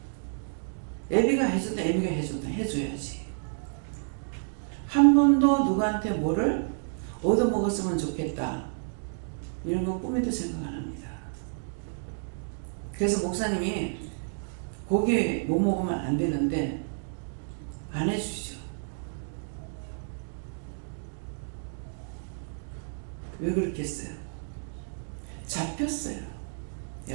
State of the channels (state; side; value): silent; left; digital silence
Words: 애비가 해줬다, 애비가 해줬다, 해줘야지. 한 번도 누구한테 뭐를 얻어먹었으면 좋겠다, 이런 거 꿈에도 생각 안 합니다. 그래서 목사님이 고기 못 먹으면 안 되는데 안 해주시죠. 왜 그렇겠어요? 잡혔어요. 예,